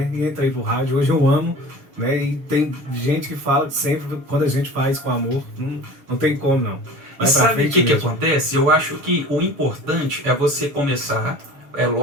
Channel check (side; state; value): left; late; 6.8 ms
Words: E entrei pro rádio, hoje eu amo, né? E tem gente que fala que sempre, quando a gente faz com amor, não tem como não. E sabe o que acontece? Eu acho que o importante é você começar. É